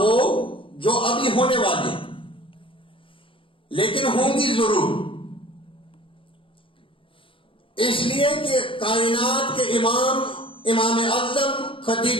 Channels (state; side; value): late; right; 0.25 ms